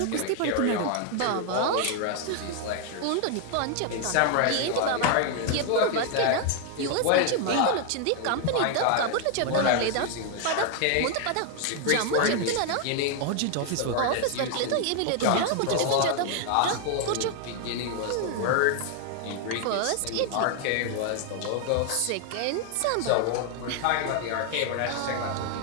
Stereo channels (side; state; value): both; different; correlation 0.00